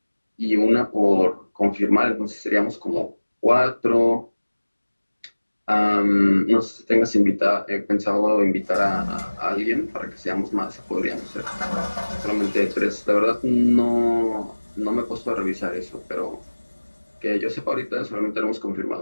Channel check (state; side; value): inverted; both; correlation -1.00